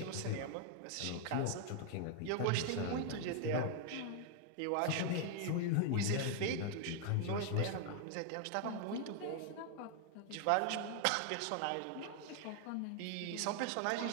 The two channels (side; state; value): both; different; correlation 0.00